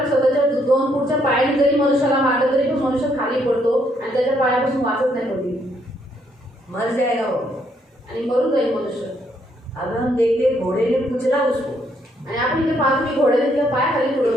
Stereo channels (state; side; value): normal; both; correlation 0.72